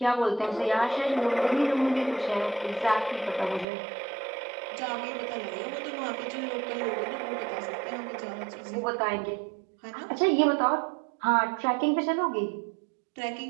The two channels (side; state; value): left; drops out; at 3.7 s